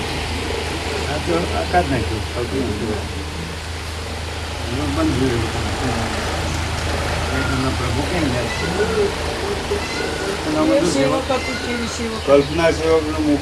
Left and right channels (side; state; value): both; identical; correlation 1.00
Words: આખો આકાશ નાખ્યું બંધ પ્રભુ કેમ કલ્પના સેવક ને